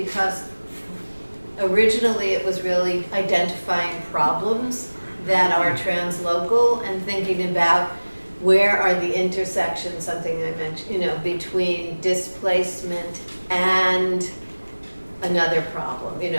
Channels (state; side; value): inverted; both; correlation -1.00